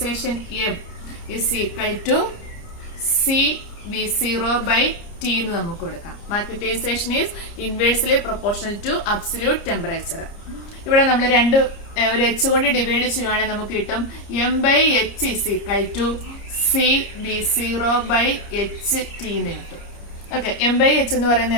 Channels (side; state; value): right; late; 30 ms